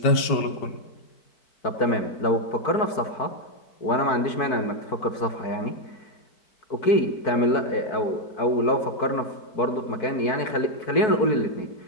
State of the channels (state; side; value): late; right; 4.6 ms